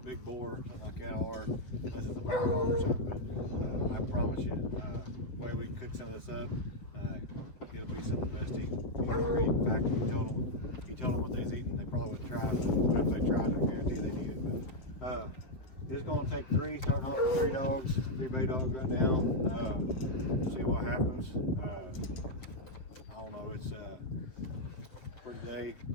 boar, something like that, or unless it's a bar hog or something. But I promise you, the way we cook some of this up, it'll be some of the best eating you'll ever eat. In fact, he told them what they was eating. They probably wouldn't try it, but if they tried, I guarantee they need it. But it's going to take three, starting off with 3 dogs, 3 bay dogs right now. See what happens. I don't know. It's for today,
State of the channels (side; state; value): right; late; 7.5 ms